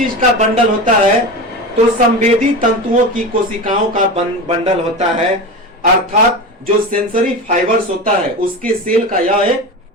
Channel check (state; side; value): normal; both; correlation 0.25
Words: का बंडल होता है? तो संवेदी तंतुओं की कोशिकाओं का बंडल होता है। अर्थात जो सेंसरी फाइबर्स होता है उसके सेल का यह एक